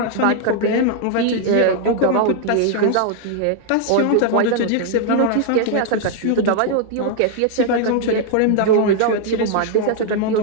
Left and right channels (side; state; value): both; different; correlation 0.00